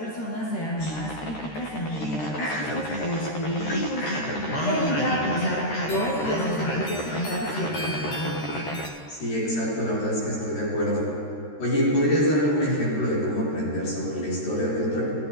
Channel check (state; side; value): late; right; 13 ms